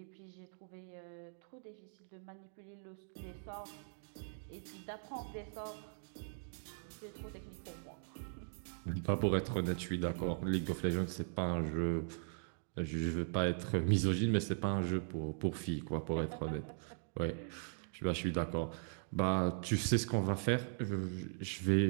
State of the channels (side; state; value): left; silent; digital silence